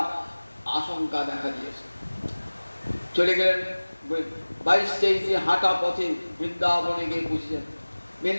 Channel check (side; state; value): both; inverted; correlation -1.00